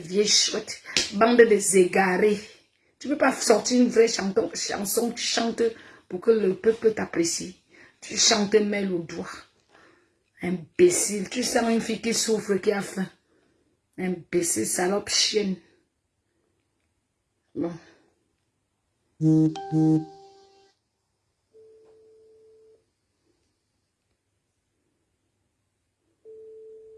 chouettes, bande de égarés. Tu ne peux pas sortir une vraie chanson, tu chantes pour que le peuple t'apprécie. Tu chantes mêle au doigt. Imbécile, tu sens une fille qui souffre, qui a faim. Imbécile, salope, chienne. Bon.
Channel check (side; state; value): both; identical; correlation 1.00